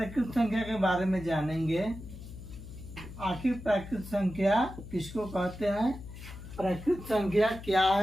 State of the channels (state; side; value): noise; left; hum, 13 dB below the sound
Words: संख्या के बारे में जानेंगे। आखिर प्राकृत संख्या किसको कहते हैं, प्राकृत संख्या क्या